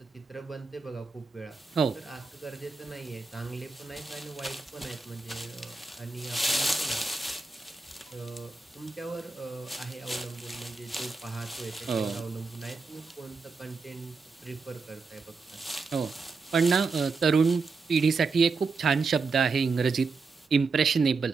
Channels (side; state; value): left; quieter; 4.3 dB